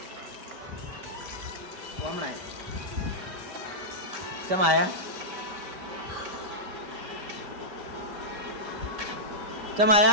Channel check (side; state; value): left; late; 5.1 ms